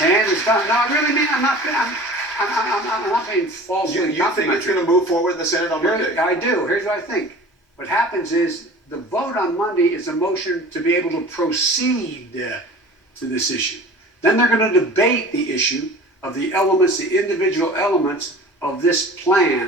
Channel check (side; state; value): both; normal; correlation 0.41